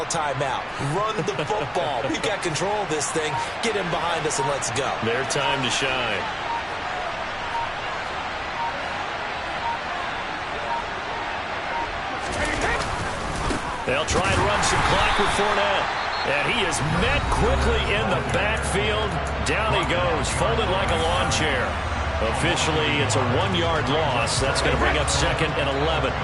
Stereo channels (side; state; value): both; identical; correlation 1.00